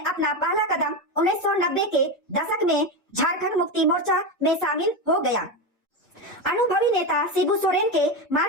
पहला कदम 1990 के दशक में झारखंड मुक्ति मोर्चा में शामिल हो गया। अनुभवी नेता शिबू सोरेन के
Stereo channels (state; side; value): normal; both; correlation 0.15